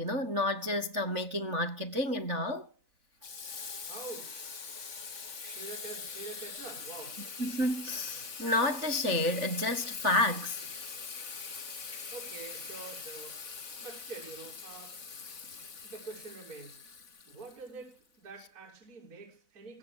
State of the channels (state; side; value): late; left; 4.0 ms